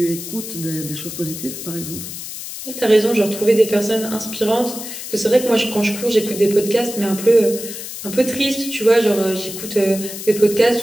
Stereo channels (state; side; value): noise; left; hiss, 9 dB below the sound